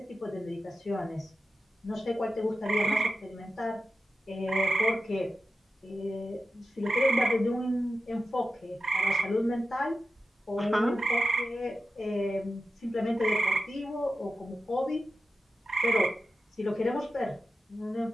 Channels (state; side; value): normal; both; correlation 0.91